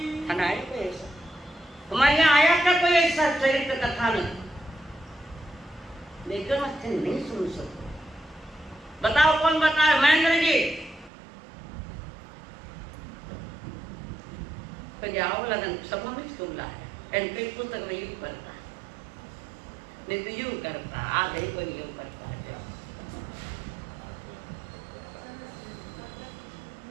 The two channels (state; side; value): drops out; left; at 11.1 s